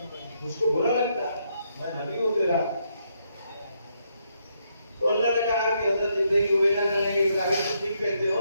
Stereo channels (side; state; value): both; inverted; correlation -0.76